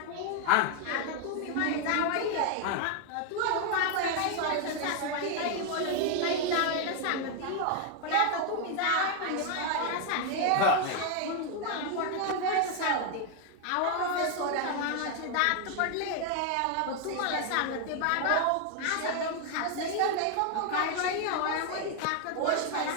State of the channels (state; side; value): different; both; correlation 0.00